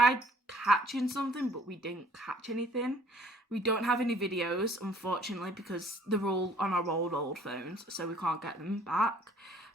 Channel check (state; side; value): normal; both; correlation 0.56